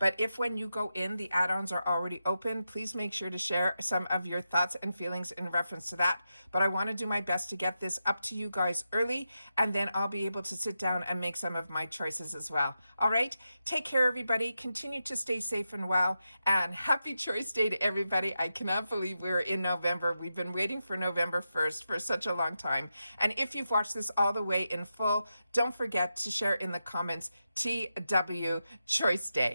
if when you go in, the add-ons are already open, please make sure to share some of your thoughts and feelings in reference to that. But I want to do my best to get this up to you guys early, and then I'll be able to sit down and make some of my choices as well. All right, take care, everybody. Continue to stay safe and well, and happy Choice Day to everybody. I cannot believe we're in November. We've been waiting for November 1st for such a long time. And if you've watched this all the way in full, don't forget to share in the comments TW Choice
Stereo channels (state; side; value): inverted; both; correlation -0.88